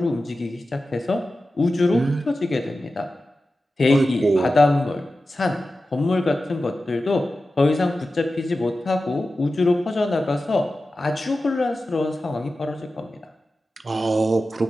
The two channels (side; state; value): both; normal; correlation 0.94